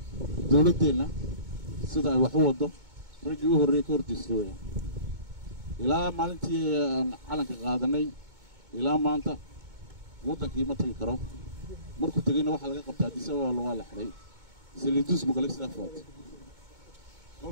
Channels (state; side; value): late; left; 2.2 ms